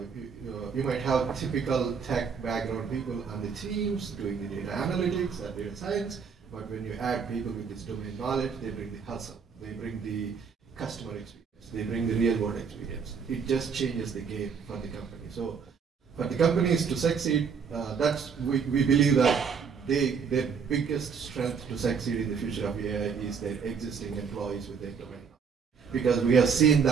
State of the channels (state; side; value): quieter; left; 6.2 dB